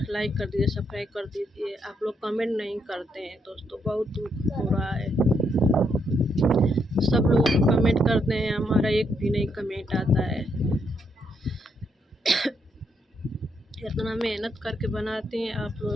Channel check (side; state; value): both; normal; correlation 0.77